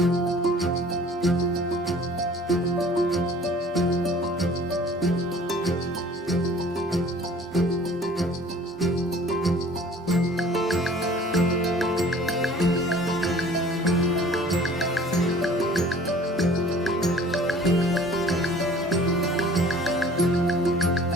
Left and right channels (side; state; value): both; normal; correlation 0.50